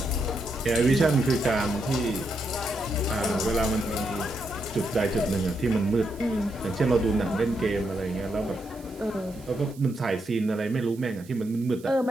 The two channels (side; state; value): right; noise; hiss, 24 dB below the sound